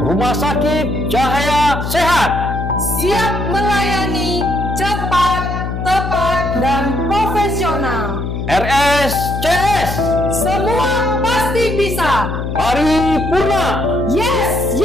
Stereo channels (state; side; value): noise; left; hum, 4 dB below the sound